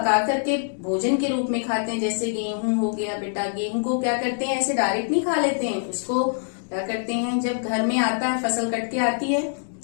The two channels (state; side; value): silent; right; digital silence